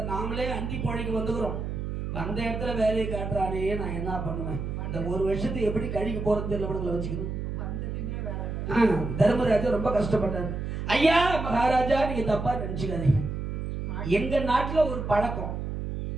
நாமளே அண்டி போழைக்கு வந்துக்கிறோம், அந்த இடத்துல வேலையை காட்டுறானே, நான் என்ன பண்ணுவேன்? இந்த 1 வருஷத்துக்கு எப்படி கழிக்க போறது தெரியல வச்சுக்கணும். தர்மராஜா ரொம்ப கஷ்டப்பட்டாரு. ஐயா மகாராஜா, நீங்க தப்பா நினைச்சுக்காதீங்க. எங்க நாட்டுல ஒரு பழக்கம்,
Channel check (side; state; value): right; noise; hum, 4 dB below the sound